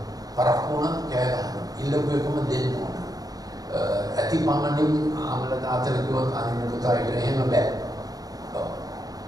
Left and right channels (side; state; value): left; late; 0.18 ms